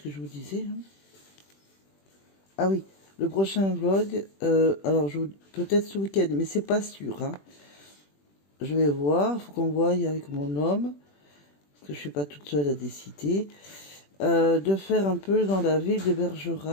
que je vous disais. Hein. Ah oui, le prochain vlog. Alors, peut-être ce week-end, mais c'est pas sûr. Hein. Je vais voir. Faut qu'on voie avec mon homme. Parce que je suis pas toute seule à décider. De faire un peu dans la ville de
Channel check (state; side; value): late; right; 21 ms